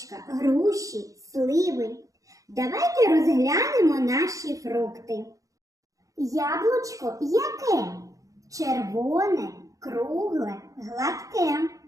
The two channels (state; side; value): late; left; 0.16 ms